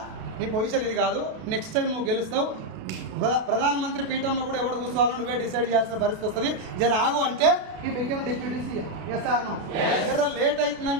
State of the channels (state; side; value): late; left; 32 ms